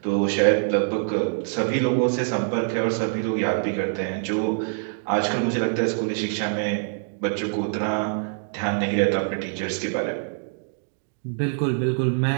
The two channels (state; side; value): silent; left; digital silence